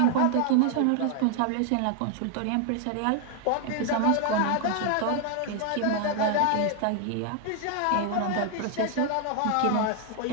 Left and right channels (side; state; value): both; different; correlation 0.00